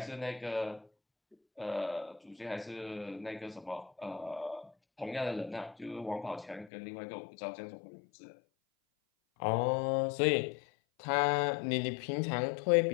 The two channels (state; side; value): drops out; right; at 6.7 s